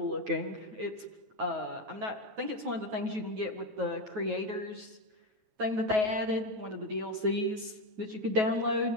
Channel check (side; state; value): left; late; 9.3 ms